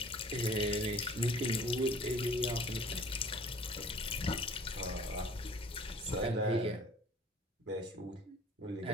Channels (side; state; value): both; normal; correlation 0.50